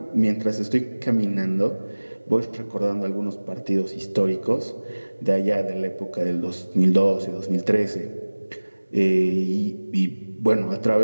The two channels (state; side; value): inverted; both; correlation -1.00